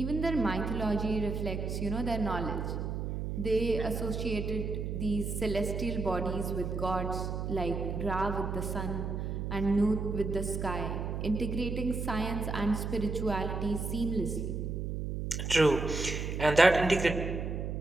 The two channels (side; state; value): right; noise; hum, 3 dB below the sound